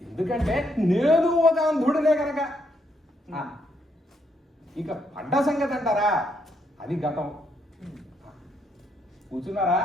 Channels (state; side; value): normal; both; correlation 0.75